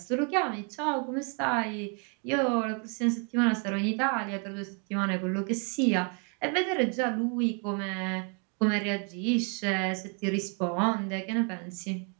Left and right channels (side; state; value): left; quieter; 38.1 dB